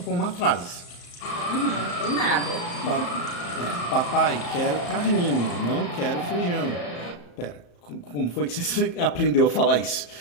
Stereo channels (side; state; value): right; late; 34 ms